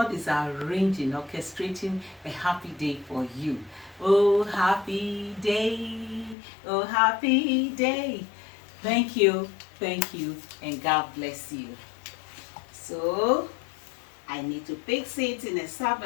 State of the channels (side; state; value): right; drops out; at 6.4 s